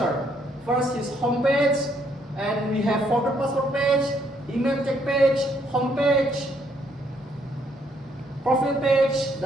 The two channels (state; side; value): normal; both; correlation 0.70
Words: First is home page. And we have forward password page, email check page, home page, profile page,